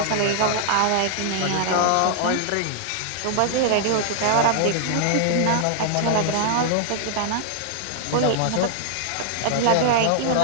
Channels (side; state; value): both; different; correlation -0.01